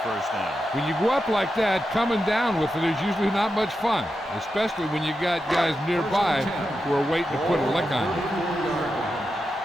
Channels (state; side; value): normal; both; correlation 0.88